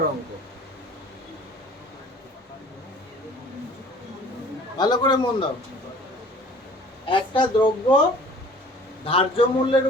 অঙ্ক। ভালো করে মন দাও। একটা দ্রব্য ধার্য মূল্যের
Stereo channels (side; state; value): both; normal; correlation 0.49